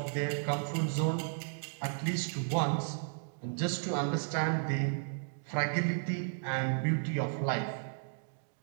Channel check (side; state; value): left; silent; digital silence